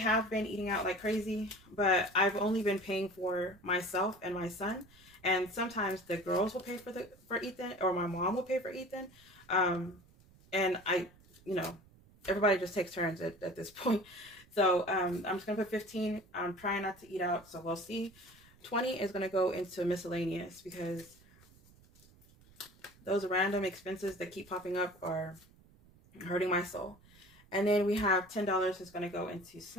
been eating out like crazy, but I've only been paying for myself and my son. And sometimes the girls will pay for Ethan, or my mom will pay for Ethan. And everybody just takes turns at this point. So I'm just going to put 15. I'm trying not to eat out, so we'll see. 20 is going to go into miscellaneous because those random expenses that keep popping up are hurting my soul. And then we have $10 is going to go into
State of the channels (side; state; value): right; noise; rumble, 26 dB below the sound